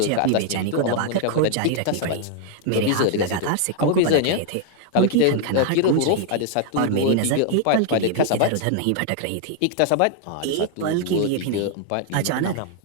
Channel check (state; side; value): different; both; correlation 0.00